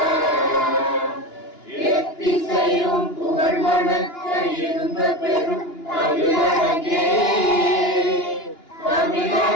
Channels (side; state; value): right; late; 2.9 ms